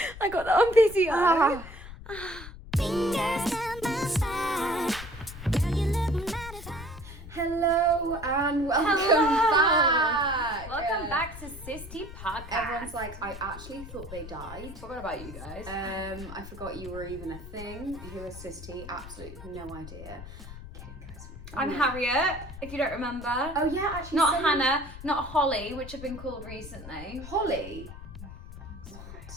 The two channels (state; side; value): noise; left; rumble, 13 dB below the sound